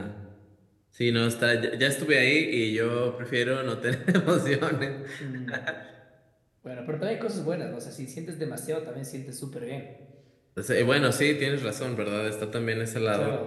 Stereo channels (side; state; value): both; identical; correlation 1.00